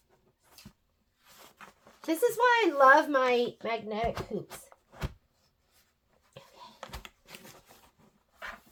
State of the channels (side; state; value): both; identical; correlation 1.00